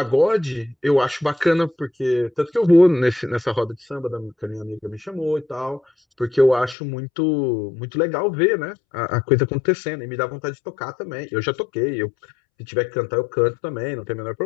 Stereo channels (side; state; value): right; drops out; at 6.8 s